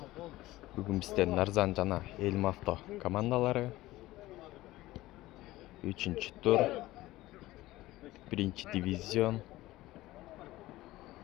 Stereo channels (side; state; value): right; quieter; 17.3 dB